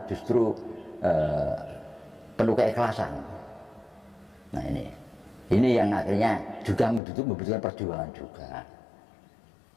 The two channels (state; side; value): drops out; right; at 7.0 s